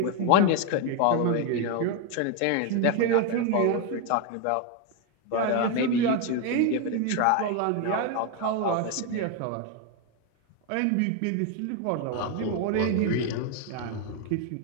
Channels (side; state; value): both; different; correlation 0.01